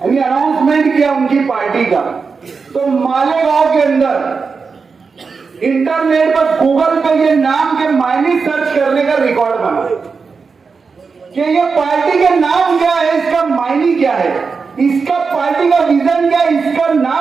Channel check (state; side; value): quieter; left; 5.0 dB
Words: अनाउंसमेंट किया उनकी पार्टी का, तो मालेगांव के अंदर इंटरनेट पर गूगल पे ये नाम के मायने सर्च करने का रिकॉर्ड बना कि ये पार्टी का नाम क्या है, इसका मायने क्या है, इसका पार्टी का विजन क्या है, इसका